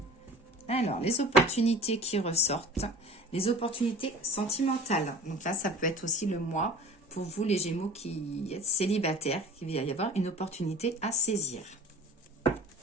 Alors, les opportunités qui ressortent, les opportunités sentimentales. Donc là, ça peut être aussi le mois pour vous, les Gémeaux qui êtes célibataires, qu'il va y avoir une opportunité à saisir.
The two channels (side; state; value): both; normal; correlation 0.42